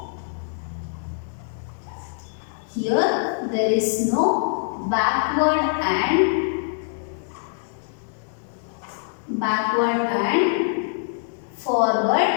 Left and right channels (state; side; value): silent; right; digital silence